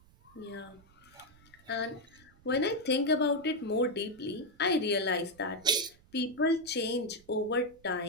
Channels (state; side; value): noise; right; rumble, 27 dB below the sound